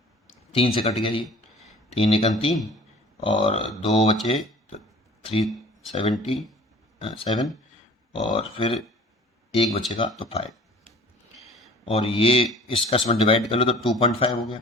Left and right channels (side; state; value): both; normal; correlation 0.47